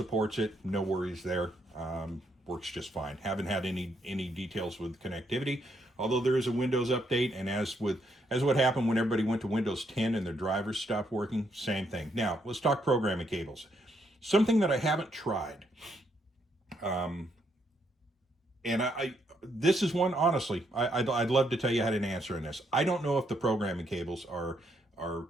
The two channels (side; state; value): both; normal; correlation 0.75